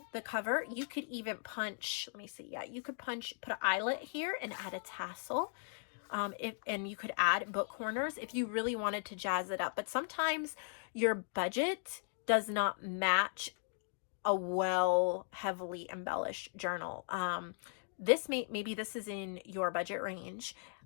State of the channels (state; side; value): silent; right; digital silence